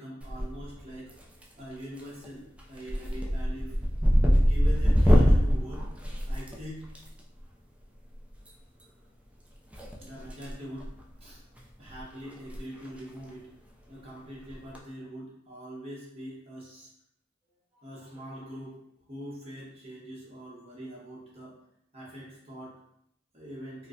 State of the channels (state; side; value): normal; both; correlation 0.97